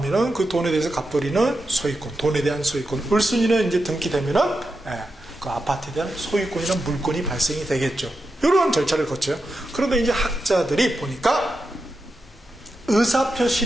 그 돈에 대해서 갑돌이는 소유권, 돈에 대한 소유권, 을순이는 이제 등기되면은 그 아파트에 대한 소유권이나 물권이 발생이 되겠죠. 이런 절차를 거쳐요. 그런데 이제 학자들이 보니까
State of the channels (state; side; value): normal; both; correlation 0.88